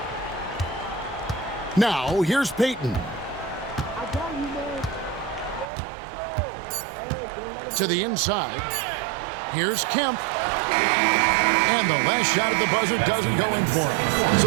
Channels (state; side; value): drops out; left; at 5.7 s